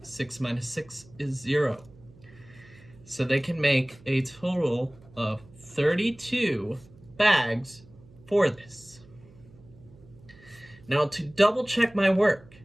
6 minus 6 is 0. So they can make a total of 32 bags for this. Now to double check my work,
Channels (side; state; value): right; noise; hum, 24 dB below the sound